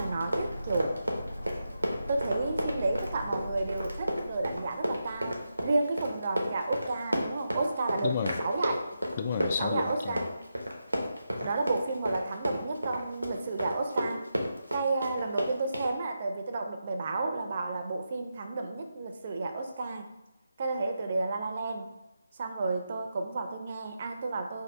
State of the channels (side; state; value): both; inverted; correlation -0.86